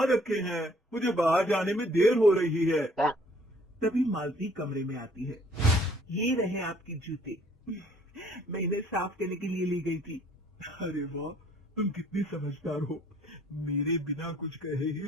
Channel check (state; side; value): normal; both; correlation 0.60